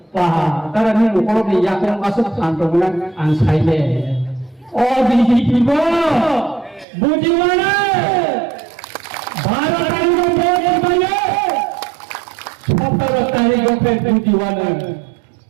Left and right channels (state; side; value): drops out; left; at 6.9 s